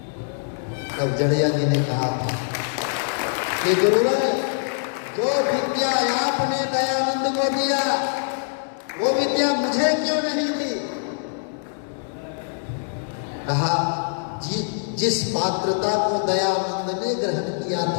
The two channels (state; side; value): silent; right; digital silence